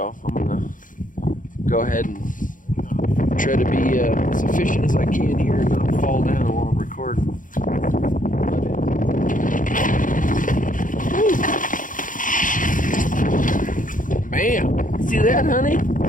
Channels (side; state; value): right; late; 0.38 ms